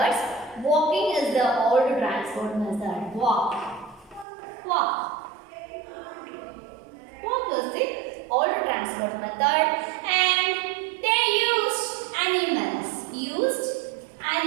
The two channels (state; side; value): drops out; left; at 4.2 s